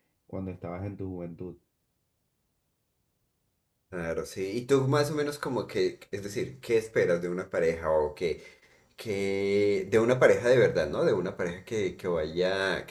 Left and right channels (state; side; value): identical; both; correlation 1.00